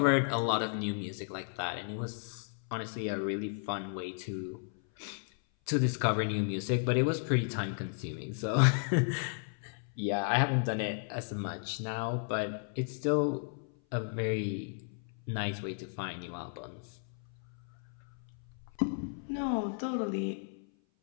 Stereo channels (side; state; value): right; silent; 55 dB below the other